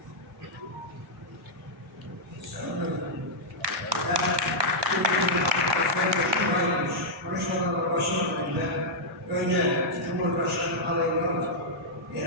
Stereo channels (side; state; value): both; normal; correlation -0.07